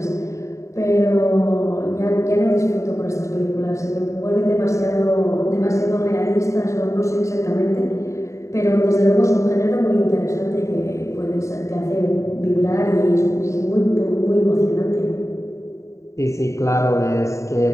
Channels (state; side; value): late; right; 0.15 ms